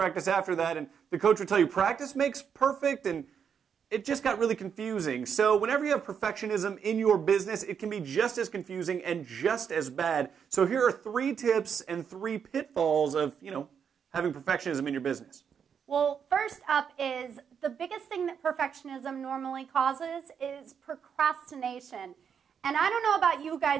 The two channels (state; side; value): quieter; left; 7.4 dB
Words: after that and the coach would tell you practice makes perfect, and it just got really confusing. So whenever you have perfectionism in your business, it can be just as confusing and just as bad. So here are 3 tips and 3 pitfalls of, having perfectionism in your business. Well, first up is the biggest thing that perfectionism normally causes is procrastination. And I don't know about you